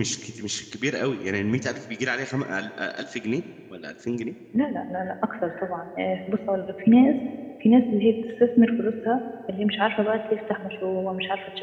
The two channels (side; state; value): both; identical; correlation 1.00